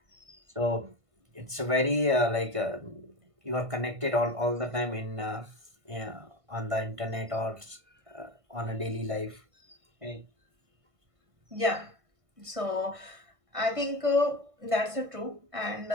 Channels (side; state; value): left; late; 1.5 ms